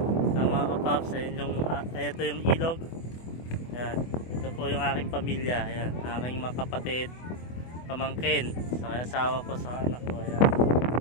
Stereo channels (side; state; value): right; late; 24 ms